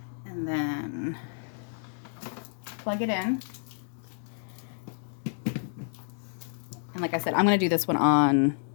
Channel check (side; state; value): right; silent; digital silence